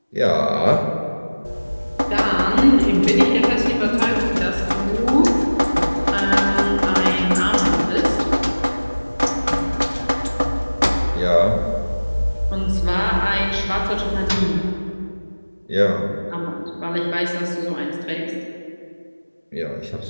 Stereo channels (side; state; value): both; inverted; correlation -1.00